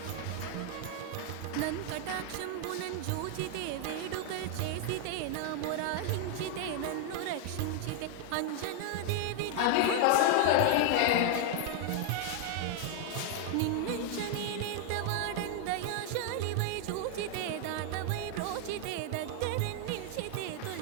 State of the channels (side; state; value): both; different; correlation 0.00